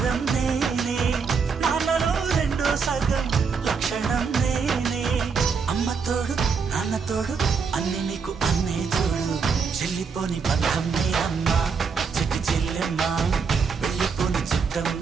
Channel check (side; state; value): left; quieter; 5.5 dB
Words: నేనే, నాన్నలో రెండో సగం లక్షణం నేనే. అమ్మతోడు నాన్నతోడు అన్ని నీకు అన్నే చూడు, చెల్లిపోని బంధం నేనమ్మా, చిట్టి చెల్లెమ్మా, వెళ్ళిపోని చుట్టం